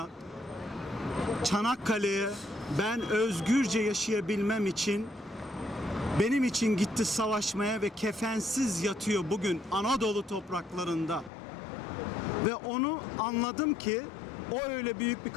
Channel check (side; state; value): right; drops out; at 11.3 s